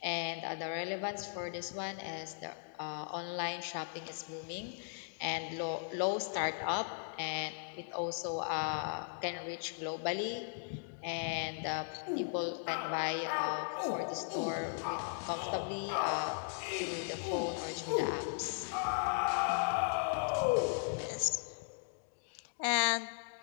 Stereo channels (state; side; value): silent; right; digital silence